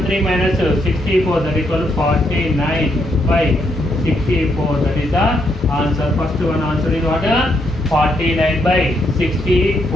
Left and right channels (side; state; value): both; normal; correlation 0.76